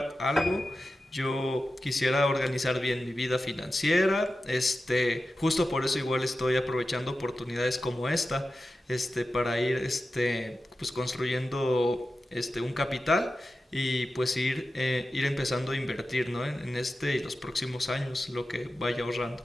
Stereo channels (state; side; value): normal; both; correlation 0.93